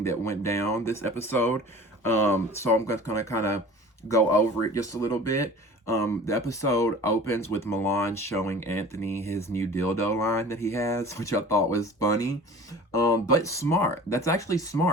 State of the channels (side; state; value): both; normal; correlation 0.42